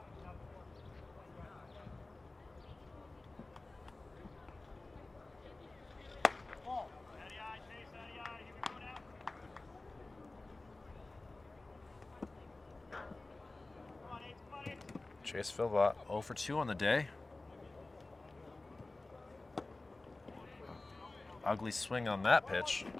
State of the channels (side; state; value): right; quieter; 3.1 dB